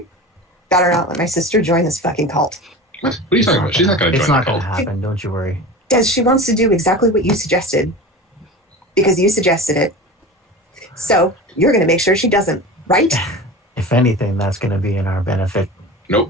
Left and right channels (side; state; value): both; normal; correlation 0.32